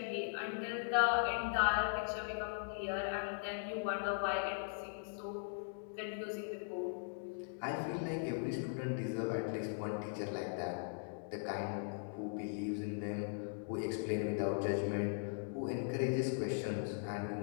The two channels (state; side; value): silent; right; digital silence